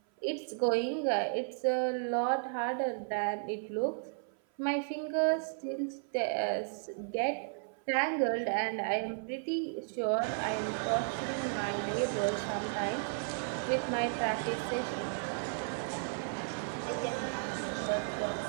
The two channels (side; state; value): left; silent; 55 dB below the other